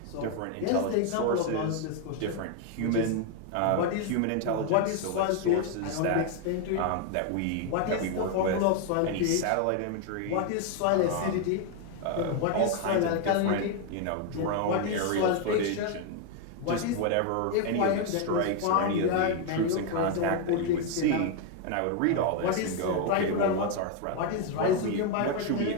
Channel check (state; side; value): different; both; correlation 0.01